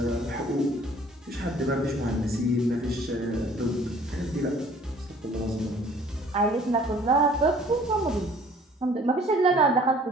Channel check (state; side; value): normal; both; correlation 0.54